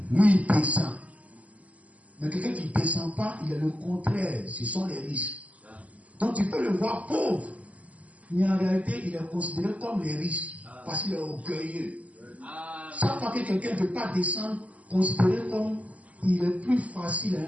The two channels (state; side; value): late; left; 0.071 ms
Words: Lui, il descend. Mais quelqu'un qui ne descend pas, il est le contraire. Ce sont les riches. Donc, tu peux le voir pauvre. Mais en réalité, il est considéré comme les riches. Parce qu'il est orgueilleux. Chaque fois que quelqu'un ne veut pas descendre, considéré comme il est plus facile